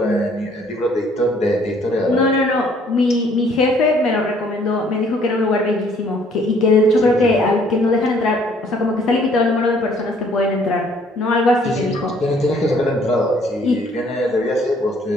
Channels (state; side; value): normal; both; correlation 0.61